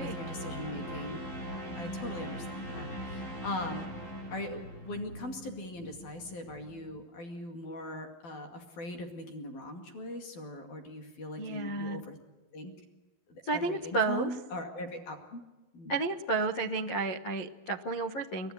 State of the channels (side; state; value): right; late; 12 ms